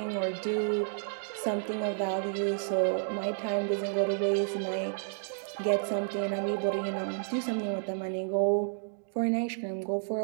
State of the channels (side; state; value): left; silent; digital silence